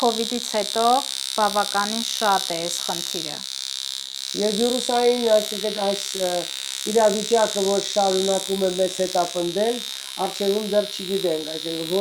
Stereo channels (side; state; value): both; identical; correlation 1.00